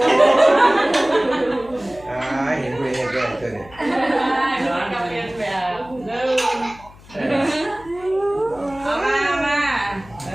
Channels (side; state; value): left; noise; hum, 22 dB below the sound